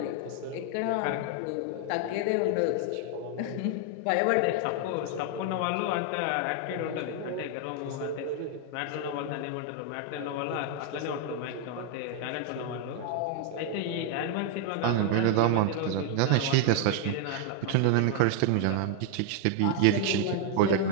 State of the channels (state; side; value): different; both; correlation 0.00